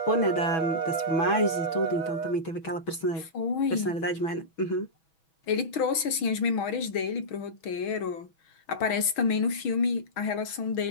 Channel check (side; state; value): right; late; 6.3 ms